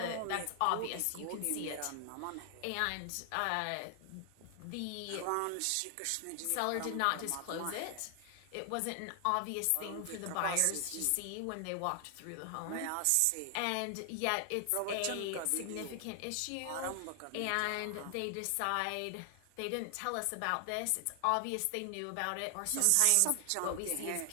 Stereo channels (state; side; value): different; both; correlation 0.00